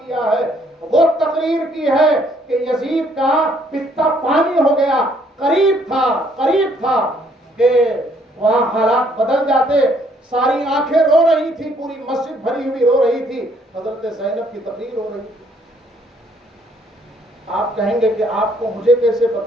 کیا ہے، وہ تقریر کی ہے کہ یزید کا پتا پانی ہو گیا، قریب تھا کہ وہاں حالات بدل جاتے، ساری آنکھیں رو رہی تھی، پوری مسجد بھری ہوئی رو رہی تھی، حضرت زینب کی تقریر ہو رہی تھی۔ آپ کہیں گے کہ آپ کو مجھے کیسے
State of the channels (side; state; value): both; normal; correlation 0.66